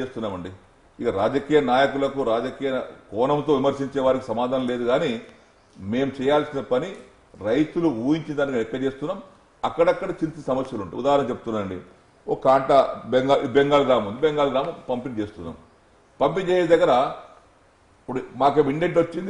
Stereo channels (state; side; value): identical; both; correlation 1.00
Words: చేస్తున్నామండి. ఇక రాజకీయ నాయకులకు, రాజకీయ కోణంతో విమర్శించే వారికి సమాధానం లేదు. కానీ మేము చేయాల్సిన పని రైతులు ఊహించిన దానికి ఎక్కడ చేస్తున్నాం. అక్కడక్కడ చిన్న సమస్యలు ఉంటాయి. ఉదాహరణ చెప్తున్నానండి, ఒక కాంట బెంగాల్ గ్రామం ఉంది, బెంగాల్ గ్రామం పంపిణీ చేస్తున్నాం. పంపిణీ చేసే దగ్గర ఇప్పుడు మాకేమో ఇండెంట్ వచ్చింది